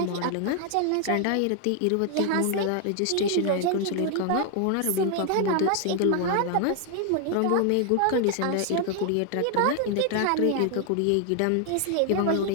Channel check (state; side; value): different; both; correlation 0.00